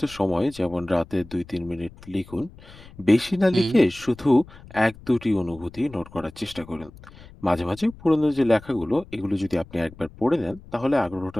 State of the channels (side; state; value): left; noise; rumble, 20 dB below the sound